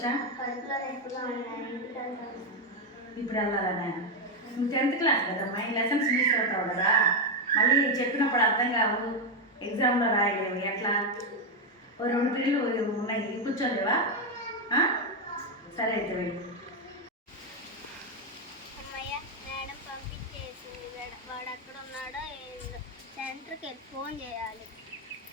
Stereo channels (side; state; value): both; normal; correlation 0.05